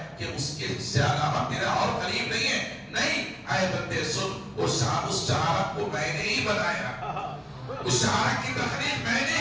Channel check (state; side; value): identical; both; correlation 1.00